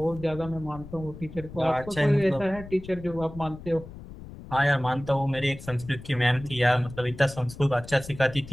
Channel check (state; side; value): noise; left; rumble, 15 dB below the sound